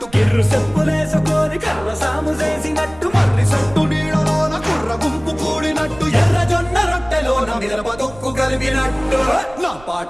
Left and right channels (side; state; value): right; noise; rumble, 21 dB below the sound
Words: కిర్రు చెప్పులేసుకొని కర్ర సాము చేసినట్టు మర్రి సొట్టు నీడలోన కుర్ర గుంపు కూడినట్టు ఎర్ర జొన్న రొట్టెలోన మిరప దొక్కు కలిపినట్టు నా